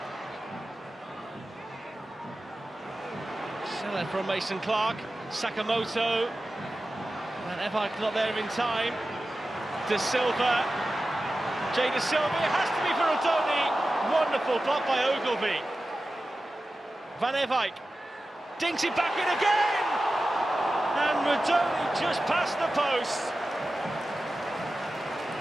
Seller from Mason Clark. Sakamoto. Van Ewijk not there in time. De Silva. Jay De Silva. It has to be for Odoni. Wonderful block by Ogilvie. Van Ewijk dinks it back in again, and Rodoni just past the post.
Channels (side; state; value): both; normal; correlation 0.94